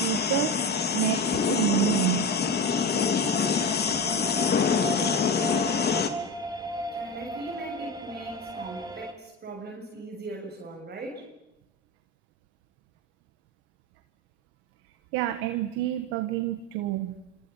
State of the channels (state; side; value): normal; both; correlation 0.21